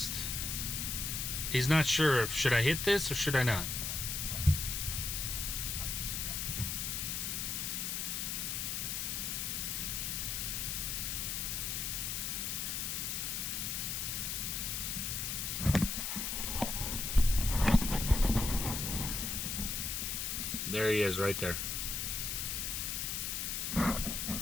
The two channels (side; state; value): left; noise; hiss, 1 dB below the sound